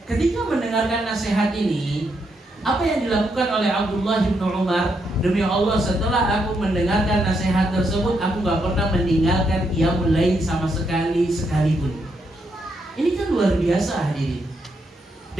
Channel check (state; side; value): normal; both; correlation 0.79